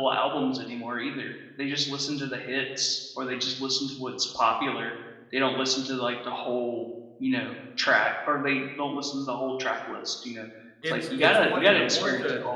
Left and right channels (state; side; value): identical; both; correlation 1.00